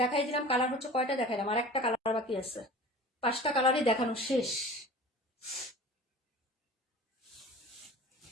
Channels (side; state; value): both; normal; correlation 0.40